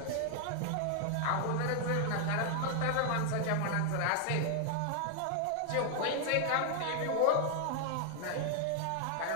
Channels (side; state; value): both; different; correlation 0.00